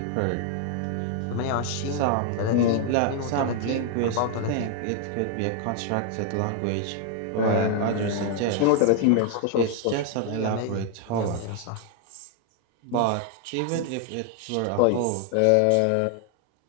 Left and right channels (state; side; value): different; both; correlation 0.00